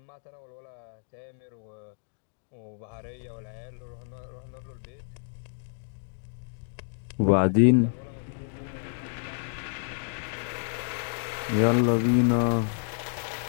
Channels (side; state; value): right; silent; digital silence